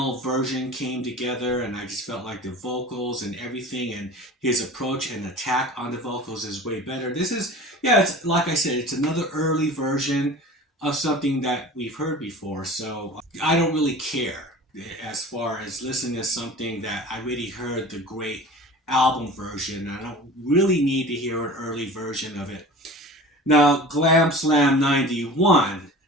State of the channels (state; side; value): normal; both; correlation 0.39